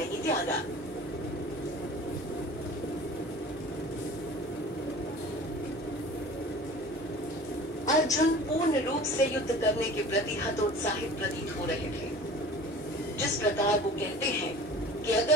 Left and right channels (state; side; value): normal; both; correlation 0.42